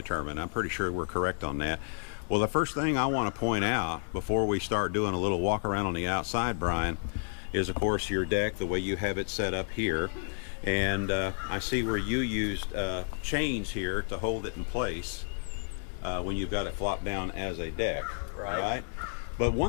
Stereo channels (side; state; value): right; silent; 57 dB below the other